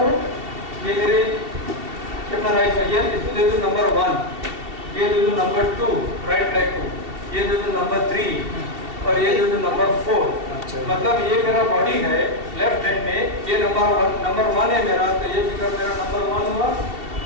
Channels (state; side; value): late; left; 2.7 ms